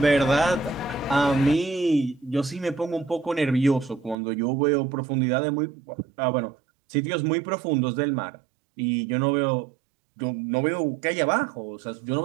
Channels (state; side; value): drops out; left; at 4.2 s